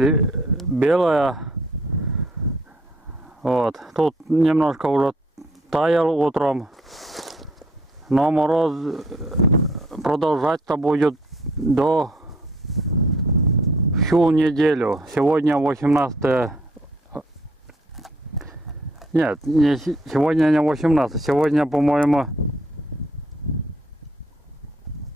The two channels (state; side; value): normal; both; correlation 0.62